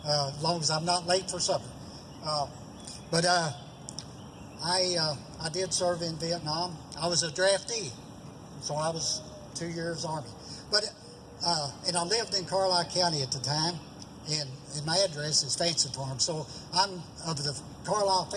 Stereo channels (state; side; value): identical; both; correlation 1.00